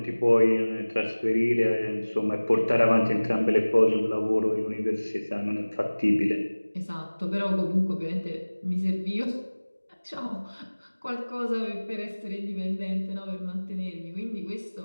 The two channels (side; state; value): both; inverted; correlation -1.00